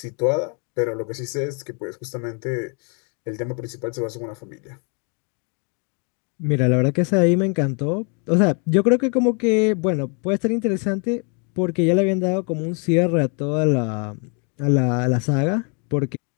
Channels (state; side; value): quieter; right; 36.6 dB